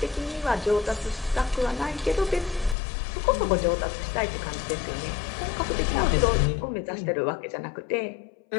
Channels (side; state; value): right; drops out; at 2.8 s